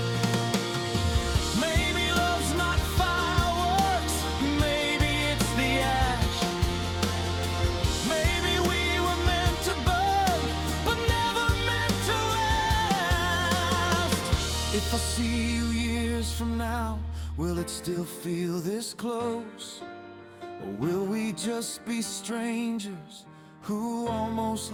Maybe love's not fireworks, maybe it's the ash. Maybe we were meant to burn, but never meant to last. If I see you years from now, will it still feel this close? Or will we just be strangers who almost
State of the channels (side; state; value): both; identical; correlation 1.00